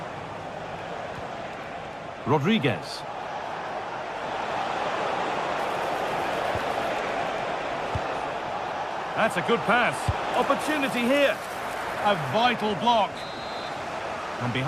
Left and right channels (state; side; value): identical; both; correlation 1.00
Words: Rodriguez. That's a good pass. Opportunity here. A vital block. And